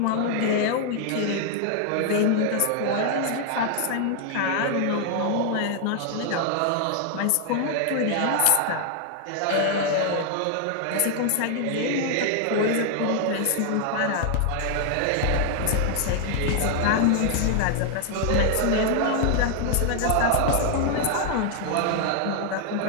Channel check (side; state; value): both; different; correlation 0.00